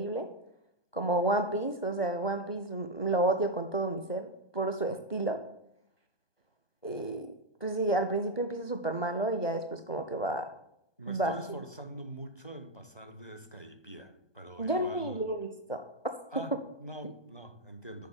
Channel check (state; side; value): late; right; 1.2 ms